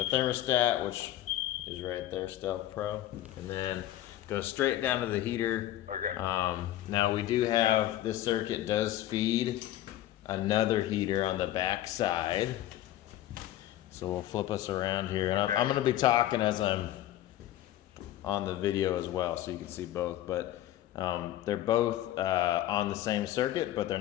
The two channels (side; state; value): right; quieter; 13.6 dB